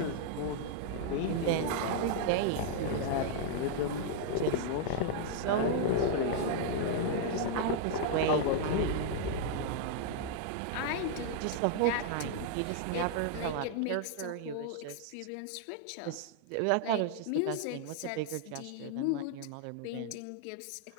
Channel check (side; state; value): both; different; correlation -0.01